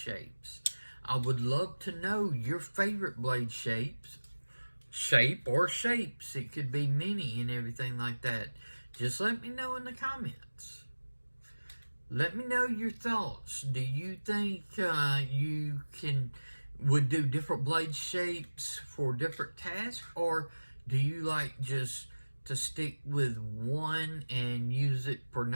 I would love to know your favorite blade shapes. Shape or shapes. It could be many and everything like that. Just let me know in the comments. Let me know your thoughts. Do you think you would do different blade shapes for different tasks, or do you like just to stick with one and use it for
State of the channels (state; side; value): inverted; both; correlation -1.00